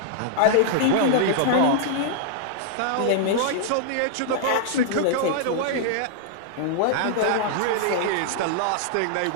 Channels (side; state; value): both; different; correlation -0.01